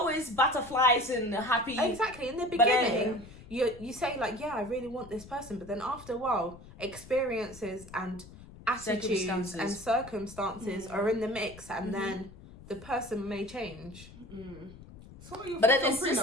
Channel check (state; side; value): noise; left; rumble, 18 dB below the sound